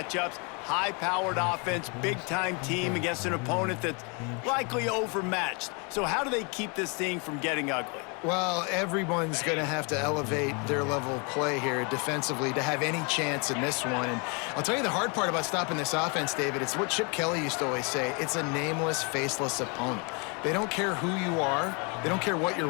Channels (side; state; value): right; quieter; 33.0 dB